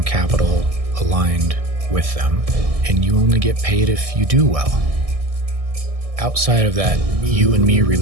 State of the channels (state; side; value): late; left; 1.6 ms